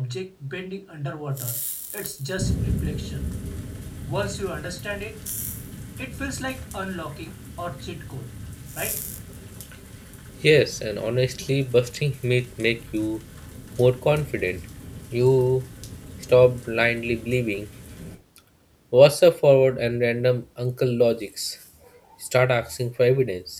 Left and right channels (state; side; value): identical; both; correlation 1.00